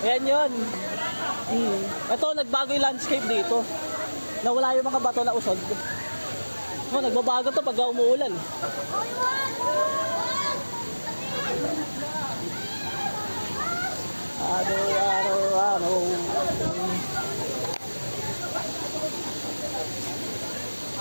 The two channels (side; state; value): both; inverted; correlation -1.00